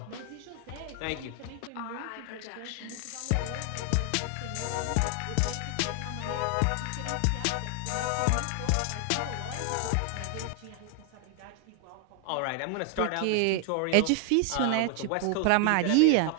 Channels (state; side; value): different; both; correlation 0.00